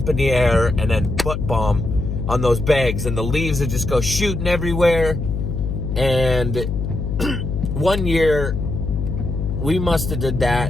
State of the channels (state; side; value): noise; left; hum, 3 dB below the sound